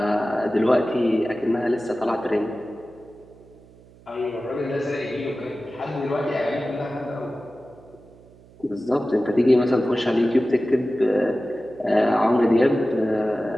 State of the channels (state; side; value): noise; right; hum, 25 dB below the sound